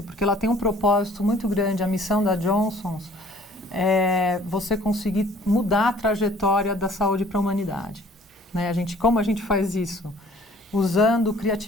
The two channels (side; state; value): both; normal; correlation 0.54